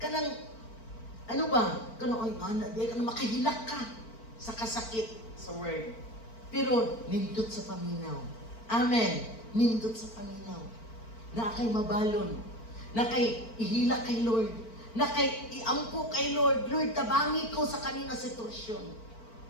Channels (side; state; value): right; late; 4.4 ms